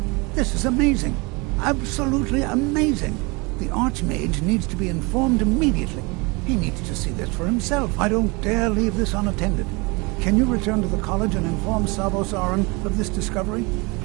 This is amazing. Absolutely amazing. The Archmage needs to be informed immediately. He needs to see this for himself. I don't dare leave this unattended. Can you return to the college and inform Savos Aran of this discovery?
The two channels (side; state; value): left; quieter; 27.6 dB